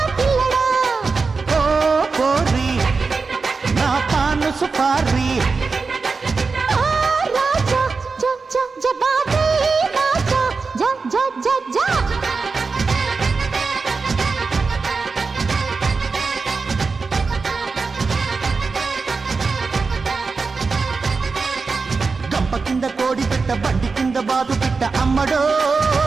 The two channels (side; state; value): left; quieter; 4.5 dB